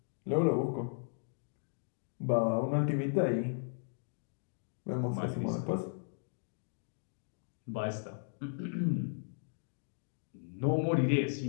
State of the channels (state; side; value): silent; right; digital silence